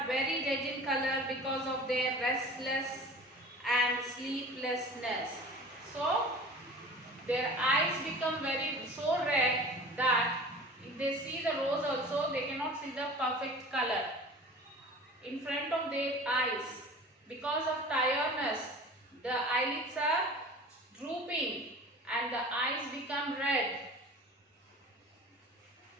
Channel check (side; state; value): both; normal; correlation 0.40